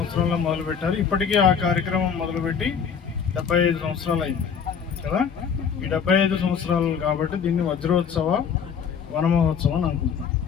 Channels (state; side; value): quieter; right; 7.0 dB